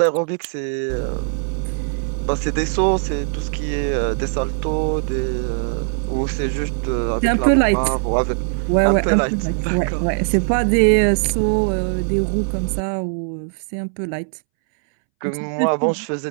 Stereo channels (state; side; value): silent; left; 65 dB below the other